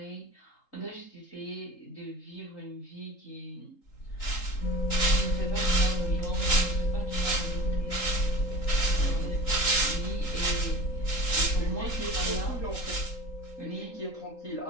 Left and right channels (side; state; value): right; late; 3.8 ms